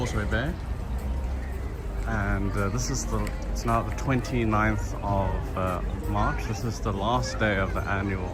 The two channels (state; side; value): identical; both; correlation 1.00